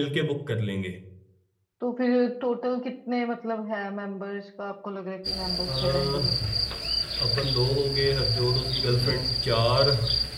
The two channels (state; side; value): identical; both; correlation 1.00